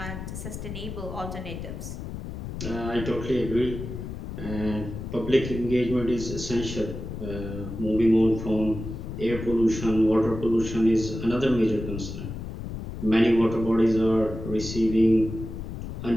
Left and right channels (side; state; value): left; noise; rumble, 8 dB below the sound